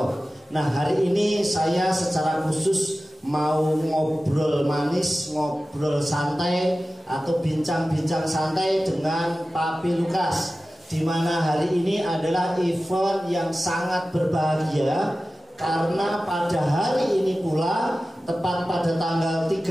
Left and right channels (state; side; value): normal; both; correlation 0.95